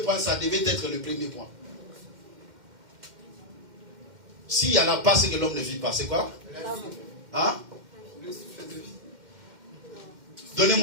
ça devait être le premier point. S'il n'y en a pas, c'est que l'homme ne vit pas. C'est quoi? Hein?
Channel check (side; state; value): left; late; 2.1 ms